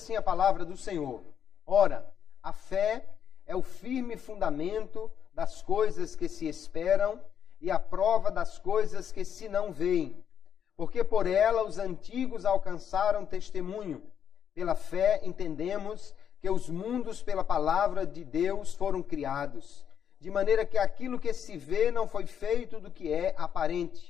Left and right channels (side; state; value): right; quieter; 8.5 dB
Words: a palavra do Senhor: Ora, a fé é o firme fundamento das coisas que se esperam e a prova das coisas que se não veem. Porque por ela os antigos alcançaram testemunho. Pela fé entendemos que os mundos pela palavra de Deus foram criados, de maneira que aquilo que se vê não foi feito do que é